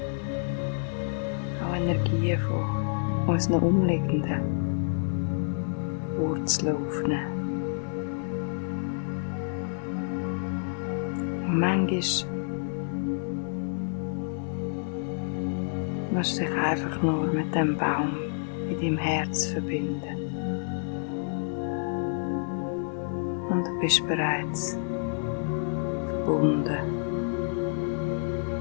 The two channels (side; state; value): right; silent; digital silence